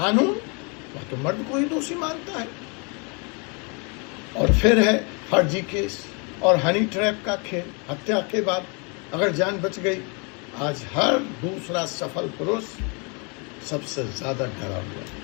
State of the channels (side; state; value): right; quieter; 33.6 dB